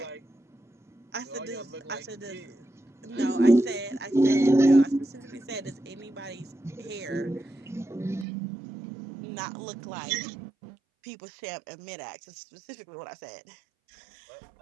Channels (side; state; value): left; drops out; at 8.2 s